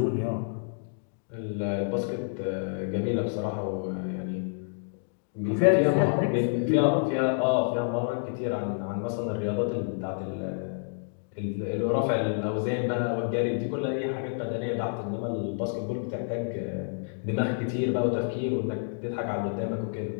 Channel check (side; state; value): right; silent; digital silence